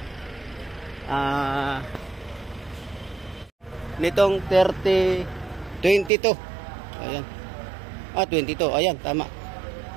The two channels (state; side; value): drops out; left; at 6.1 s